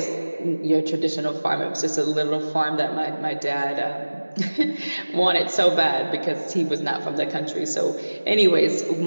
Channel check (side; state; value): both; inverted; correlation -1.00